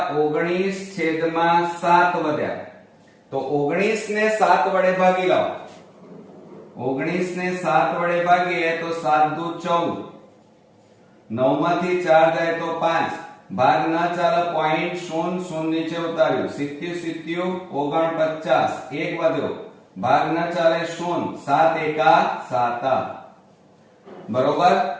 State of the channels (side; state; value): both; identical; correlation 1.00